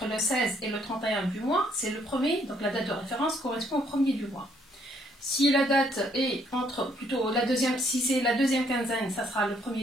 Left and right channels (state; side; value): normal; both; correlation 0.68